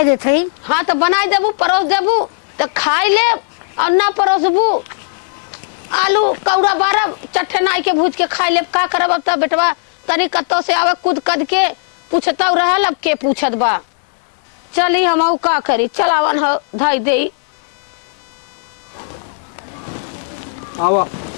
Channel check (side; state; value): right; silent; 68 dB below the other